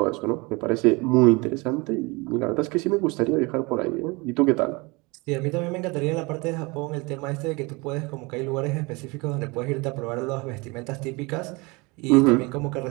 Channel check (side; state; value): left; quieter; 26.2 dB